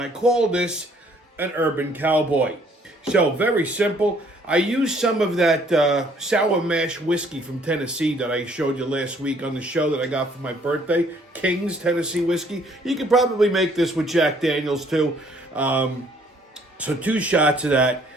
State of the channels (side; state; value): both; normal; correlation 0.62